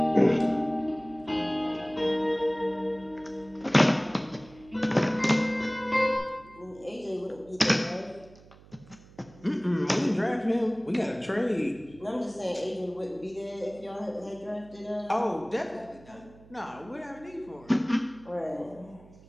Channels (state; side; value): noise; right; hum, 23 dB below the sound